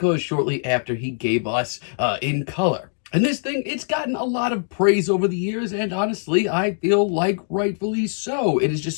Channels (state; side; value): silent; right; digital silence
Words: shortly after he gave us In Color. And this thing, it's gotten a lot of praise over the years, and honestly, I feel like rightfully so. It is just